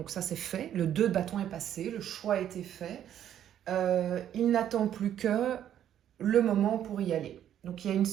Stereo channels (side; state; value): left; quieter; 10.5 dB